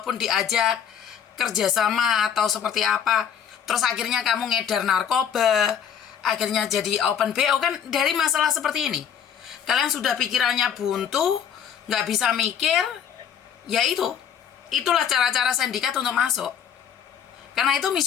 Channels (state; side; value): quieter; right; 8.3 dB